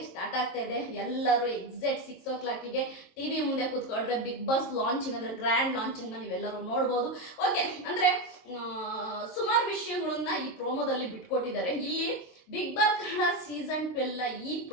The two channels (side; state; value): right; late; 22 ms